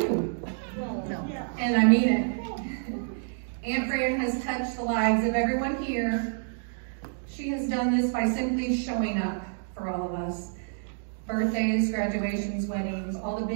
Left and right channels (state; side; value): silent; left; digital silence